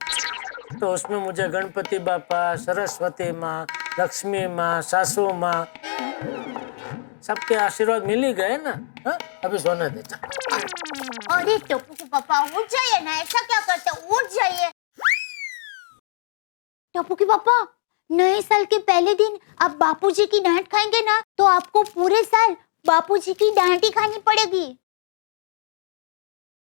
तो उसमें मुझे गणपति बापा, सरस्वती माँ, लक्ष्मी माँ, सासू माँ, सबके आशीर्वाद मिल ही गए ना। हा? अभी सोने दे। अरे टप्पू के पापा, उठ जाइए ना, ऐसा क्या करते, उठ जाइए। टप्पू के पापा, नए साल के पहले दिन आप बापूजी की डांट खाएंगे ना, तो आपको पूरे साल बापूजी की डांट ही खानी पड़ेगी।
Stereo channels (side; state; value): right; silent; digital silence